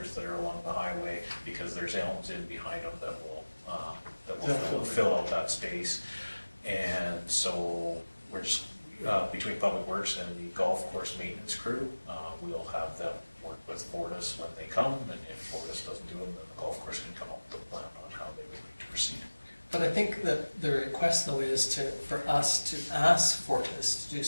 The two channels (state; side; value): inverted; both; correlation -1.00